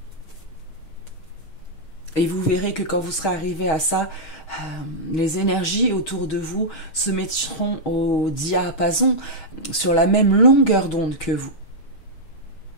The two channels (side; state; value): right; late; 6.2 ms